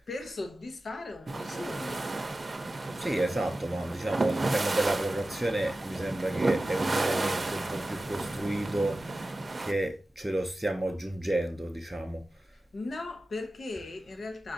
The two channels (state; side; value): normal; both; correlation 0.95